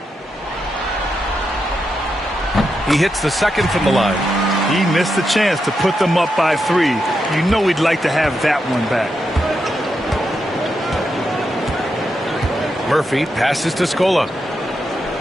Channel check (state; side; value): normal; both; correlation 0.85